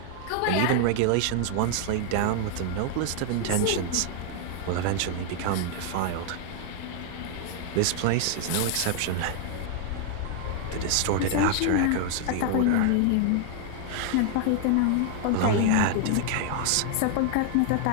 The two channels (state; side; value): different; both; correlation 0.00